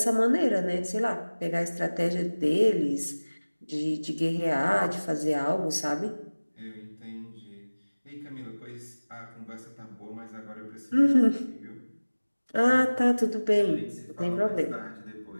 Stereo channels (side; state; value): both; inverted; correlation -1.00